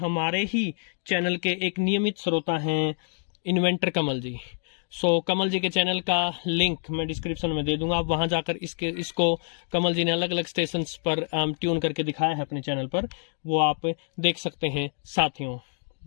ही चैनल के एक नियमित श्रोता हैं इन्वेंटर कमल जी। सो कमल जी के चैनल का लिंक मैं डिस्क्रिप्शन में दे दूंगा, आप वहां जाकर इसको कमल जी ने अलग अलग स्टेशंस पर ट्यून करके दिखाया है अपने चैनल पर, वो आप देख सकते हैं साथियों।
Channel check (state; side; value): silent; right; digital silence